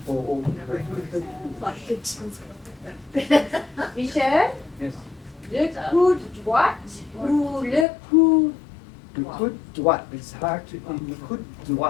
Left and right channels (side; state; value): right; drops out; at 7.9 s